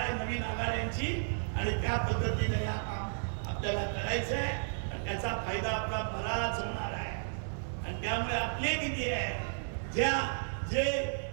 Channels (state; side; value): silent; left; digital silence